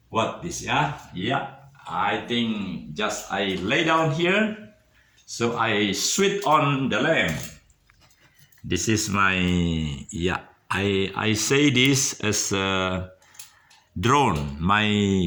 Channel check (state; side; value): identical; both; correlation 1.00